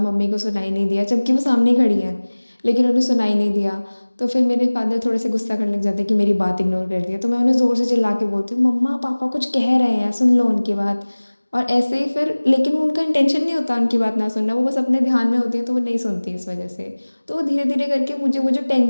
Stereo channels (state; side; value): inverted; both; correlation -1.00